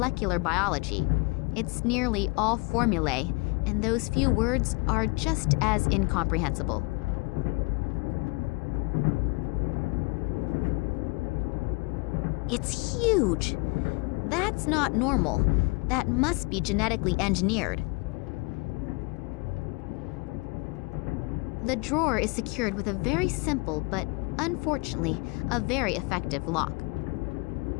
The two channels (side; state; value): right; quieter; 27.5 dB